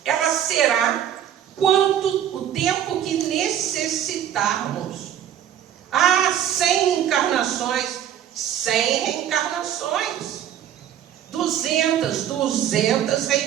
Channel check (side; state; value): left; quieter; 10.3 dB